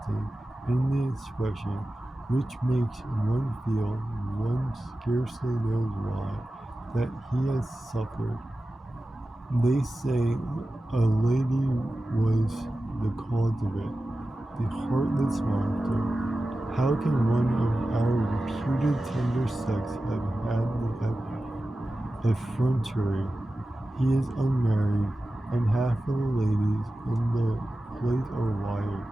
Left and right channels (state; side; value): normal; both; correlation 0.94